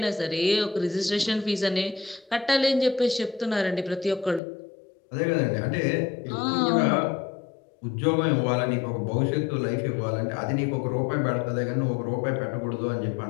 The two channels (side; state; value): right; drops out; at 4.4 s